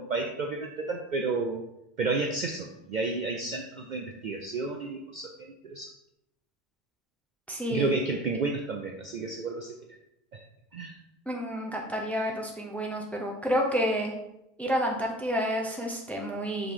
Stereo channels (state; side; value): normal; both; correlation 0.39